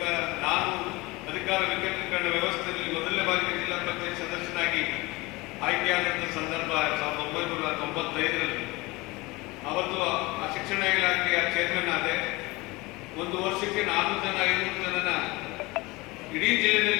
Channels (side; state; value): right; quieter; 22.7 dB